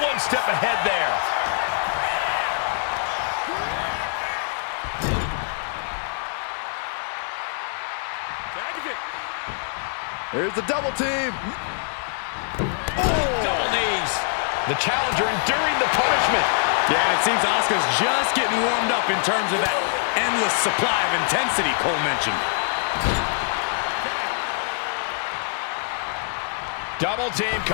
one step ahead there. Here's the double team. Oh! Double knees. The challenger enduring the punishment. Yeah, it seems Asuka's just getting warmed up in terms of that endless supply of intensity Cole mentioned. Double team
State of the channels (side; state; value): right; silent; digital silence